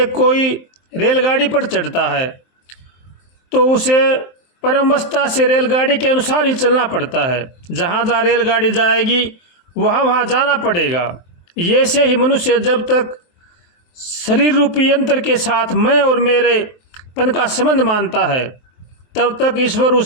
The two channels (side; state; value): right; late; 23 ms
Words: कोई रेलगाड़ी पर चढ़ता है तो उसे परमवस्था से रेलगाड़ी के अनुसार ही चलना पड़ता है। जहाँ जहाँ रेलगाड़ी जाएगी वहाँ वहाँ जाना पड़ेगा। ये से ही मनुष्य जब तक शरीर रूपी यंत्र के साथ मैं और मेरे पन का संबंध मानता है तब तक ईश्वर